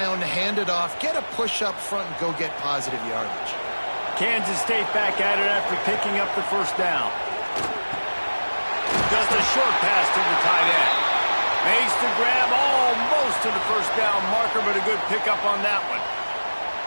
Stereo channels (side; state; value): both; inverted; correlation -1.00